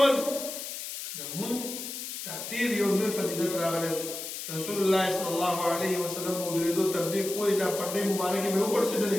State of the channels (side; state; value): left; noise; hiss, 7 dB below the sound